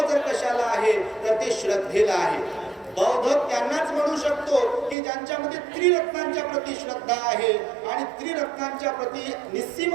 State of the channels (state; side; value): drops out; left; at 5.0 s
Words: जर कशाला आहे तर ते श्रद्धेला आहे. बौद्ध त्यांनाच म्हणू शकतो की ज्यांच्यामध्ये त्रिरत्नांच्या प्रती श्रद्धा आहे. आणि त्रिरत्नांच्या प्रती निस्सीम